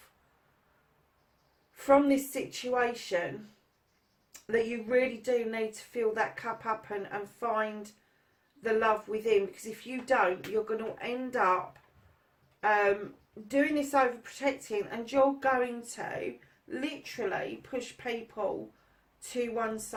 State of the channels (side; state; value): both; identical; correlation 1.00